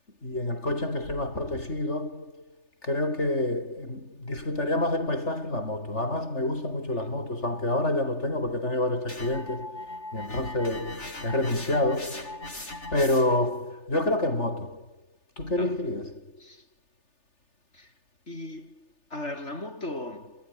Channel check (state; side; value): late; right; 3.4 ms